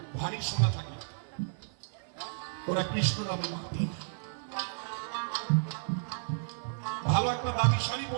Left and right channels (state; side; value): silent; left; 56 dB below the other